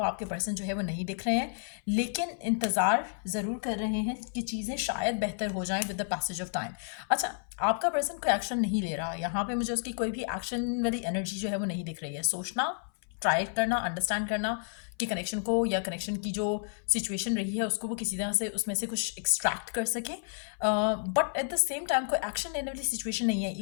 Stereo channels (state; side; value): silent; right; 57 dB below the other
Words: आपके पर्सन जो है वो नहीं दिख रहे हैं, लेकिन इंतज़ार ज़रूर कर रहे हैं कि चीज़ें शायद बेहतर हो जाएं with the passage of time. अच्छा, आपका पर्सन कोई एक्शन नहीं ले रहा, यहाँ पे मुझे उसकी कोई भी एक्शन वाली एनर्जी जो है वो नहीं दिख रही है। सोचना, ट्राई करना, अंडरस्टैंड करना कि कनेक्शन को या कनेक्शन की जो सिचुएशन रही है उसको वो किसी तरह से उसमें से कुछ एक्सट्रैक्ट कर सके, but at the same time कोई एक्शन लेने वाली सिचुएशन नहीं है।